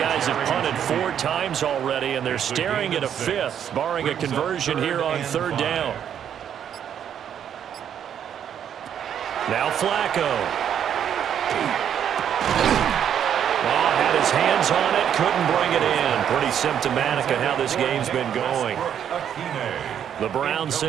have punted 4 times already, and they're staring at a 5th, barring a conversion here on 3rd down. Now Flacco. Oh, had his hands on it, couldn't bring it in. Pretty symptomatic of how this game's been going. The Browns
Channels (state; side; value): quieter; left; 9.1 dB